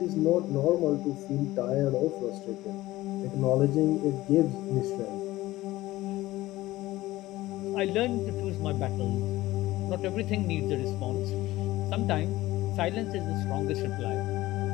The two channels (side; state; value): right; quieter; 17.2 dB